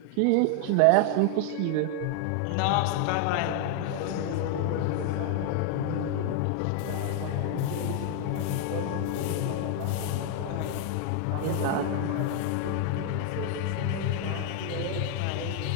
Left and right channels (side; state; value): both; different; correlation 0.00